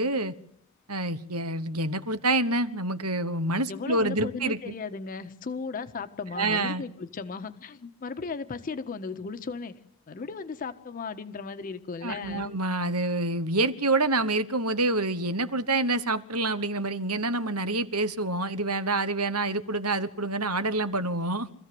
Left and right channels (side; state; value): both; normal; correlation -0.04